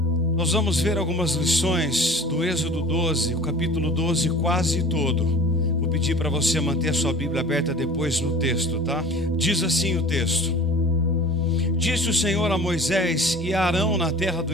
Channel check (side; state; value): both; normal; correlation 0.42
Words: ver algumas lições do Êxodo 12, o capítulo 12 quase todo. Vou pedir para você manter a sua Bíblia aberta depois no texto, tá? Diz assim o texto: Disse o Senhor a Moisés e a Arão na terra do